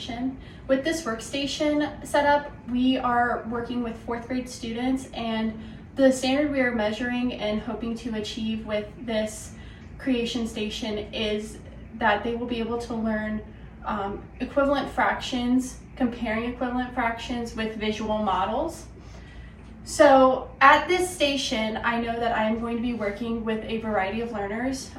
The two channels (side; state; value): both; identical; correlation 1.00